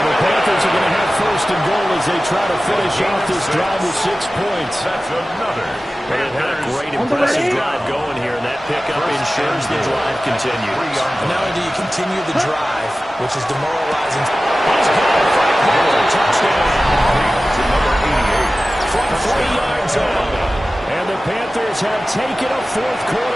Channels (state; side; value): normal; both; correlation 0.96